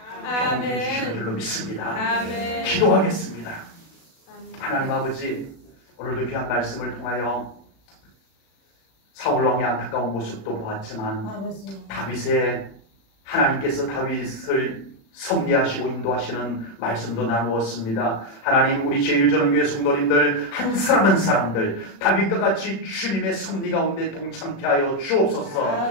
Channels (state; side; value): late; right; 36 ms